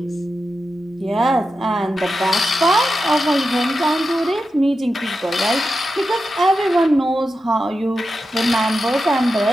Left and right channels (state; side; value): normal; both; correlation 0.90